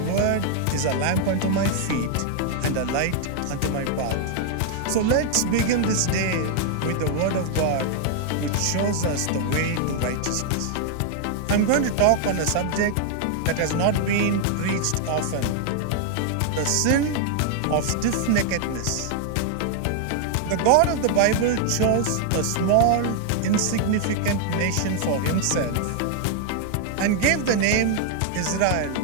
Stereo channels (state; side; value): different; both; correlation 0.00